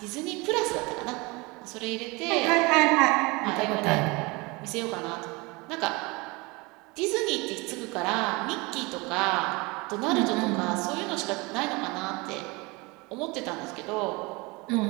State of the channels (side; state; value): left; quieter; 25.6 dB